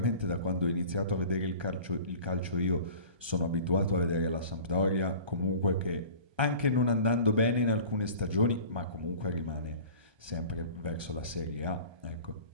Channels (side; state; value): left; late; 1.3 ms